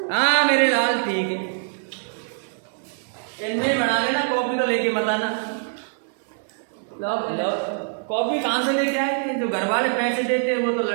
हाँ मेरे लाल ठीक है, इनमें बना लेना। कॉपी तो लेके मत आना। लो कॉपी कहाँ से लेके आए? जो घर वाले पैसे देते हैं वो तो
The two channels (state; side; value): silent; left; 63 dB below the other